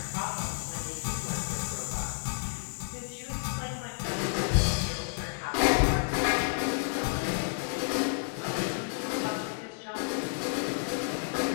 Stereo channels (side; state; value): right; silent; 57 dB below the other